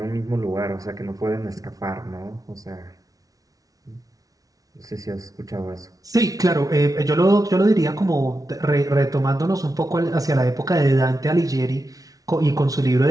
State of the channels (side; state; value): left; late; 0.18 ms